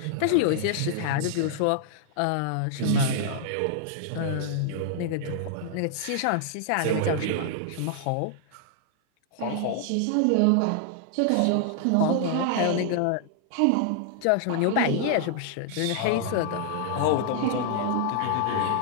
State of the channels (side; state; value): both; different; correlation 0.00